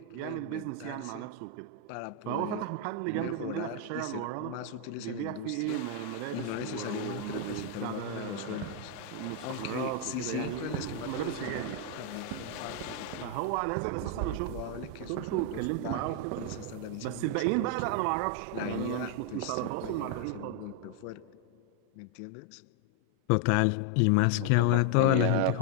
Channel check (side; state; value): both; different; correlation 0.00